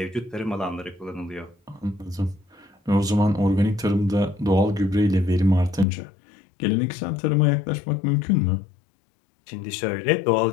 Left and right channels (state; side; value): drops out; right; at 5.9 s